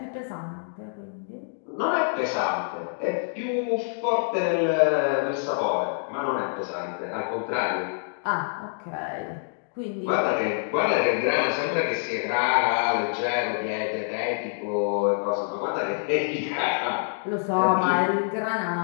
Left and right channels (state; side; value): silent; right; digital silence